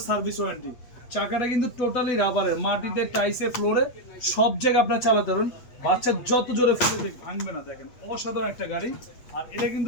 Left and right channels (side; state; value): right; late; 8.3 ms